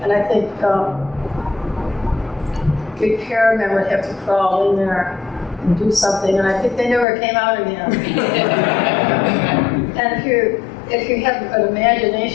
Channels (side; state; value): right; drops out; at 7.1 s